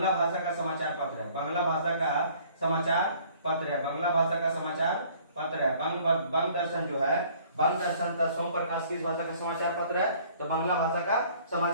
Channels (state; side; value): inverted; both; correlation -0.56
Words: भाषा का समाचार पत्र है। बांग्ला भाषा का समाचार पत्र है। बांग्ला भाषा का समाचार पत्र है। बंग दर्शन जो है, बंग दर्शन तथा सोम प्रकाश किस भाषा का समाचार पत्र है? तो बांग्ला भाषा का